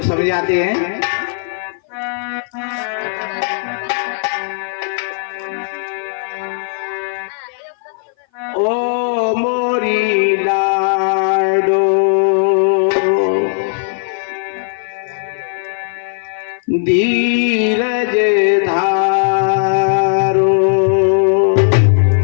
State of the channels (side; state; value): right; silent; 58 dB below the other